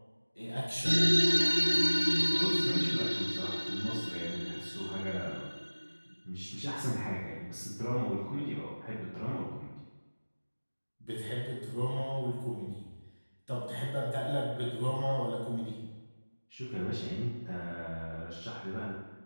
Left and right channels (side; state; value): both; inverted; correlation -1.00